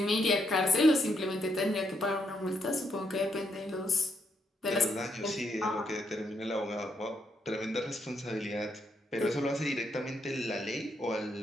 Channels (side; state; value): both; normal; correlation 0.77